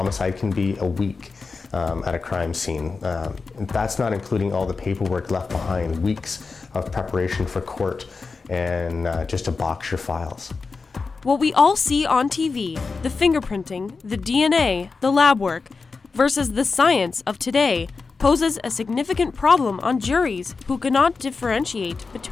can be a week at a crime scene. That's not including all the paperwork left behind, weeks of preparation for court and just to box your files. What we all see on TV, the fingerprinting, the DNA, the lab work, versus the science of today, poses a significant problem on juries who cannot differentiate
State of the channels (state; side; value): quieter; right; 4.5 dB